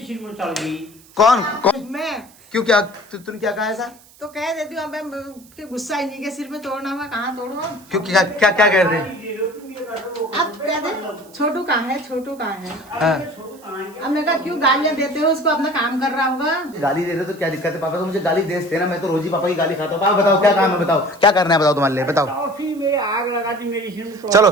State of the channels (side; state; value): right; noise; hiss, 25 dB below the sound